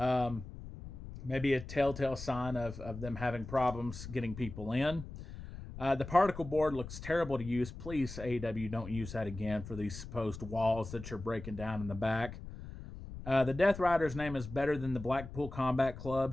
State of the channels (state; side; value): noise; left; rumble, 11 dB below the sound